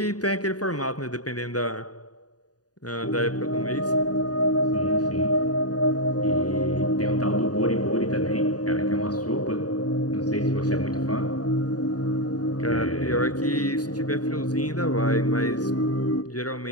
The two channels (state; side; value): late; right; 0.68 ms